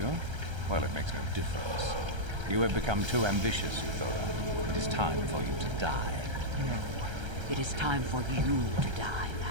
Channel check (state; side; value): late; left; 1.3 ms